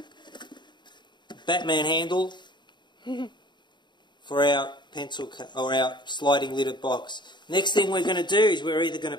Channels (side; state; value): right; late; 0.22 ms